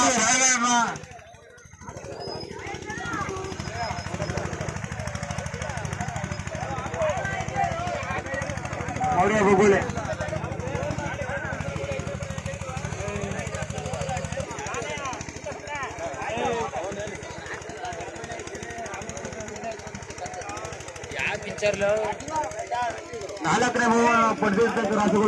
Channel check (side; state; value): both; identical; correlation 1.00